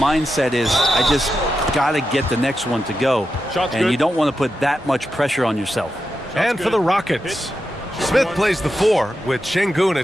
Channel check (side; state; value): both; normal; correlation 0.88